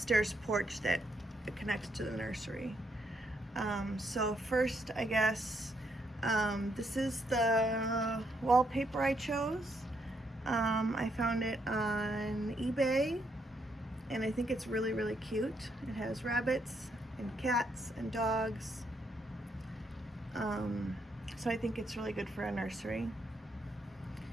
porch that connects to the nursery. So first, I guess, this is the wallpaper I chose. I found it on eBay, and I think it's really, really cute. It has rabbits and cats and dogs. So I think it's really good for a nursery.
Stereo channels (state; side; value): normal; both; correlation 0.76